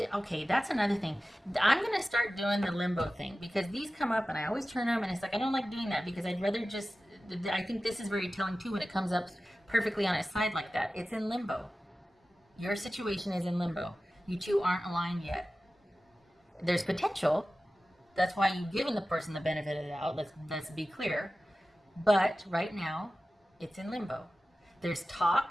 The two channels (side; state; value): both; normal; correlation 0.95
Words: Okay, that's another thing. I'm going to start doing the limbo thing because these come up and I always turn them and it's like I don't like doing that because I'd rather just, I think this is very telling too when it comes up perfectly on its side like that. It's in limbo. Your situation is in limbo. You two aren't aligned yet. There's potential. That's why you've given the person the benefit of the doubt. Let's be clear. But right now, it's in limbo. There's